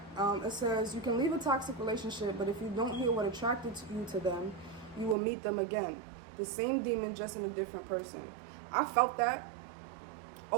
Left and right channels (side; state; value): left; drops out; at 5.2 s